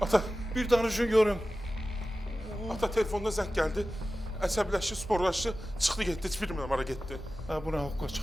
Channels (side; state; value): both; normal; correlation 0.95